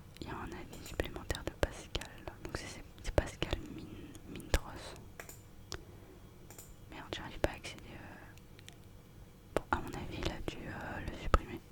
il y a un avis supplémentaire de Pascal, donc c'est Pascal Mintros. Merde, j'arrive pas à accéder. Bon, à mon avis, il a dû le supprimer.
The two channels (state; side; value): identical; both; correlation 1.00